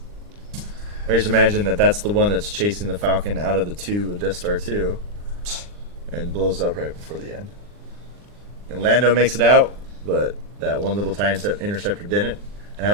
I just imagine that that's the one that's chasing the Falcon out of the 2 of Death Star 2 and blows up right before the end. And Lando makes it out, but that one little TIE interceptor didn't. And I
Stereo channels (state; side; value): late; left; 39 ms